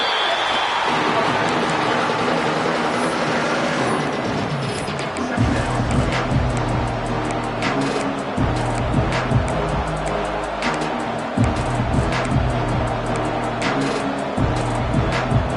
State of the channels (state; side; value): identical; both; correlation 1.00